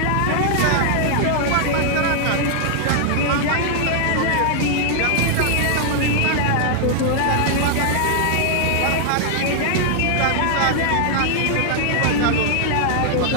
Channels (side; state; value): both; different; correlation 0.00